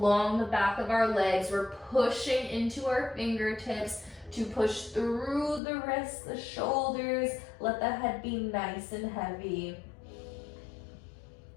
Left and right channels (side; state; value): right; drops out; at 5.6 s